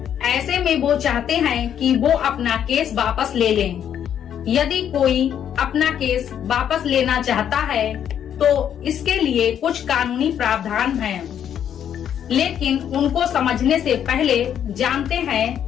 ऐसे में वो चाहते हैं कि वो अपना केस वापस ले लें। यदि कोई अपना केस वापस लेना चाहता है तो इसके लिए कुछ कानूनी प्रावधान हैं, लेकिन उनको समझने से पहले जानते हैं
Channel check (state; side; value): quieter; right; 9.3 dB